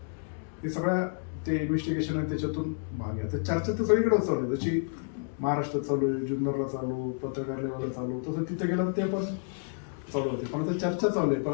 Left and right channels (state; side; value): silent; right; 58 dB below the other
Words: हे सगळ्या ते इन्व्हेस्टिगेशन आहे, त्याच्यातून भाग आहे. तर चर्चा तर सगळीकडे चालू आहे, जशी महाराष्ट्रात चालू आहे, जुन्नरला चालू, पत्रकार लेवलला चालू, तसं तिथे गेलं ते पण चालू होते. पण आता चर्चा चालू आहे. पण